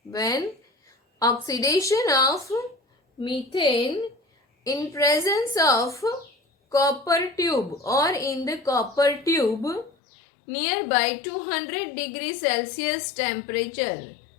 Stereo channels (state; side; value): drops out; right; at 9.9 s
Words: When oxidation of methane in presence of copper tube or in the copper tube nearby 200 degrees Celsius temperature,